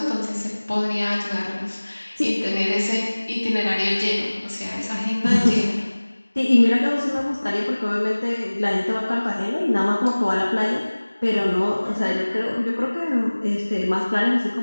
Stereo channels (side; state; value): both; inverted; correlation -1.00